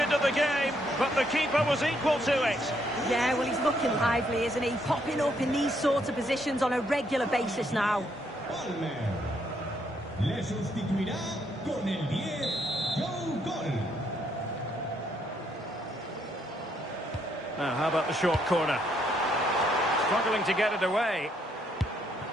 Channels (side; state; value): both; normal; correlation 0.73